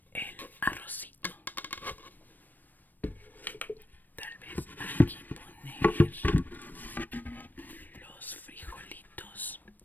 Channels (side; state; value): right; late; 0.089 ms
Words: el arrocito, tal vez aquí poner los frijolitos,